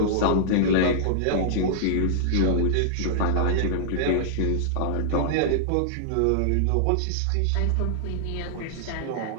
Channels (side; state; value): both; different; correlation -0.01